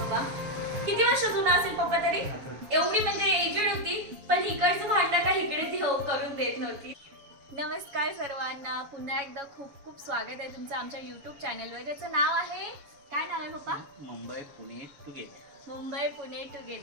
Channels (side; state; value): left; late; 7.2 ms